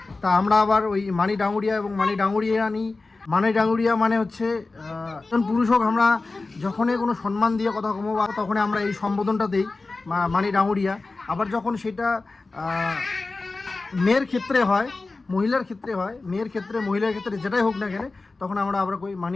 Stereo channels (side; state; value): right; quieter; 3.6 dB